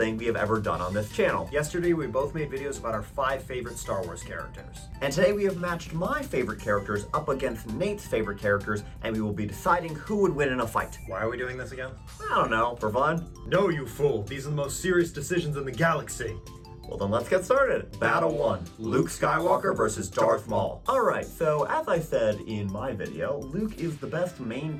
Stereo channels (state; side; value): identical; both; correlation 1.00